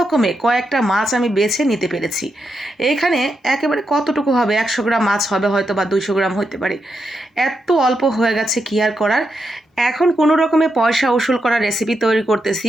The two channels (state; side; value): normal; both; correlation 0.84